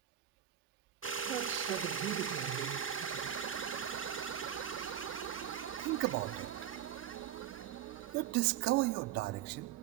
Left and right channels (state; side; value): quieter; left; 10.3 dB